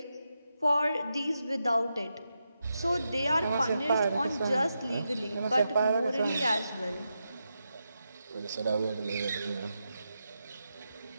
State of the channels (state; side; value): inverted; both; correlation -0.87